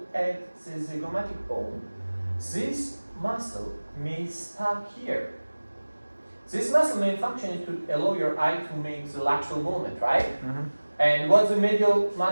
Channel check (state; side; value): inverted; both; correlation -1.00